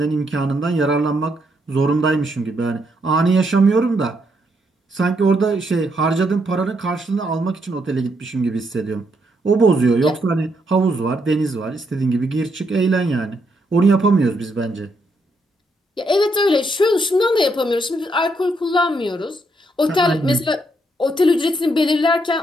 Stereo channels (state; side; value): normal; both; correlation 0.77